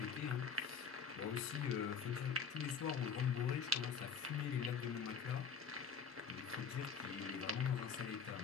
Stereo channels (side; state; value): right; quieter; 5.9 dB